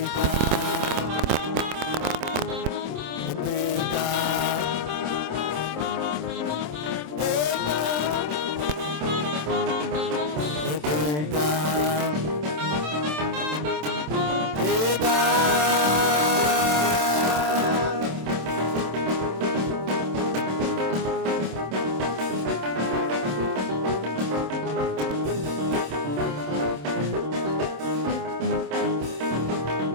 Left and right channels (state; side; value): late; left; 27 ms